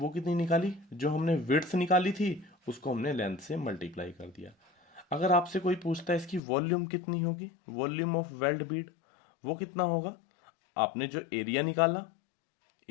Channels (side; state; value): right; drops out; at 6.4 s